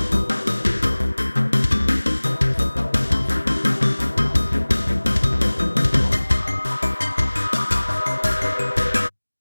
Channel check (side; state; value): both; inverted; correlation -1.00